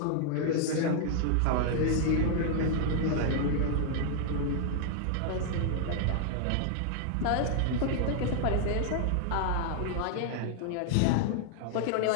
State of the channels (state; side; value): different; both; correlation 0.00